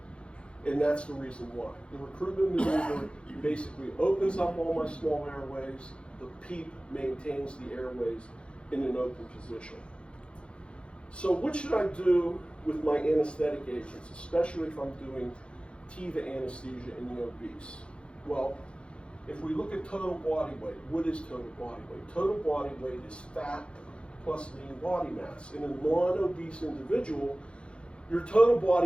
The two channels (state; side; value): late; right; 0.057 ms